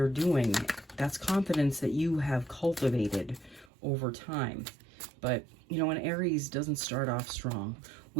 doing. That's confidence that you have cultivated over time. But, you know, an Aries doesn't start off strong.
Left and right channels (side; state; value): left; drops out; at 3.7 s